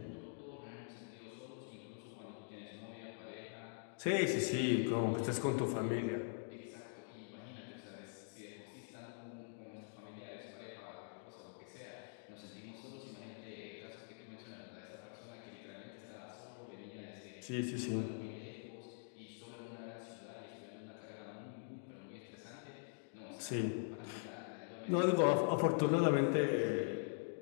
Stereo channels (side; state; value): right; silent; digital silence